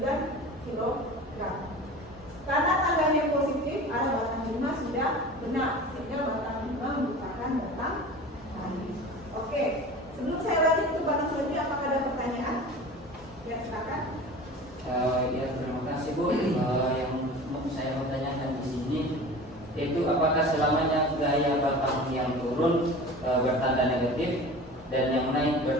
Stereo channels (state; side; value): normal; both; correlation 0.37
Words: kg. Karena tanggalnya positif, arah batang 5 sudah benar, sehingga batang 5 merupakan batang tadi. Oke, sebelum saya lanjut ke batang selanjutnya, apakah ada pertanyaan? Ya, silakan. Ya, terima kasih Bu. Yang mau saya mau tanyakan di sini, yaitu apakah selamanya gaya batang yang turun bertanda negatif dan yang naik